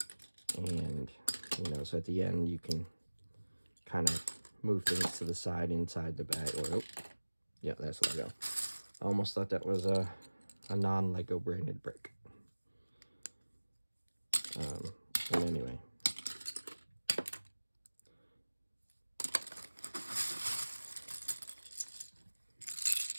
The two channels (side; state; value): both; inverted; correlation -1.00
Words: And, you know, so at the end, you can kind of move things to the side inside the bag. Or, oh, yeah, that's Lego. I almost thought that was a non-Lego branded brick. But anyway.